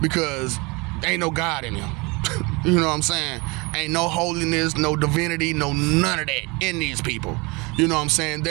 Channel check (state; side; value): quieter; left; 26.8 dB